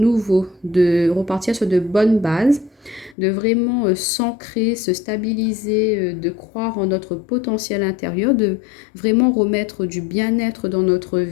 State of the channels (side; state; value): right; drops out; at 3.2 s